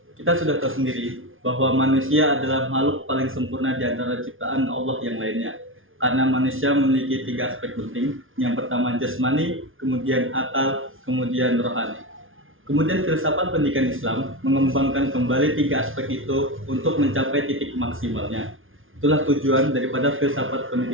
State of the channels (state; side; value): late; left; 0.58 ms